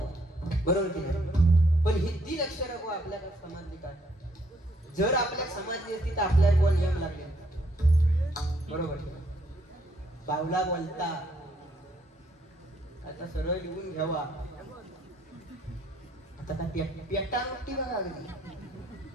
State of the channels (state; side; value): normal; both; correlation 0.69